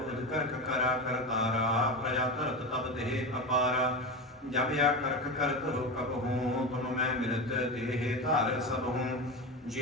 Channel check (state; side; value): normal; both; correlation 0.21